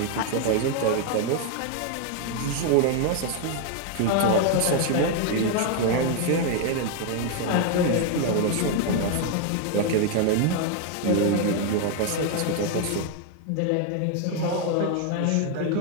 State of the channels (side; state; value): both; different; correlation 0.00